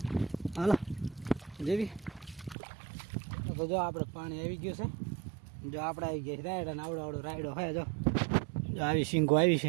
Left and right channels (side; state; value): left; drops out; at 2.6 s